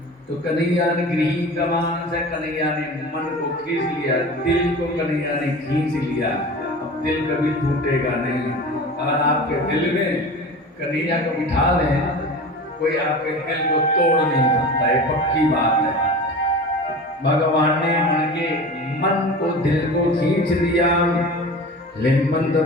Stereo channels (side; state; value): both; normal; correlation 0.34